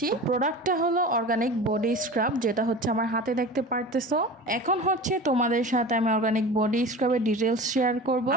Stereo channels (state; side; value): normal; both; correlation 0.34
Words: প্রোডাক্টটা হলো অর্গানিক বডি স্ক্রাব, যেটা হচ্ছে আমার হাতে দেখতে পারতেছো। এখন হচ্ছে তোমাদের সাথে আমি অর্গানিক বডি স্ক্রাবের ডিটেলস শেয়ার করব।